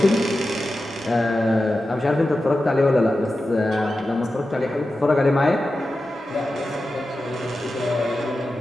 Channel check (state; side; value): normal; both; correlation 0.92